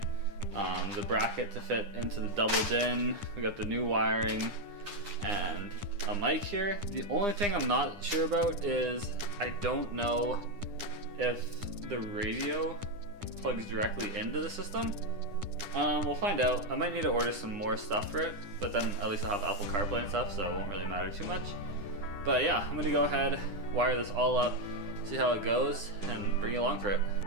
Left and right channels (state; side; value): late; left; 9.8 ms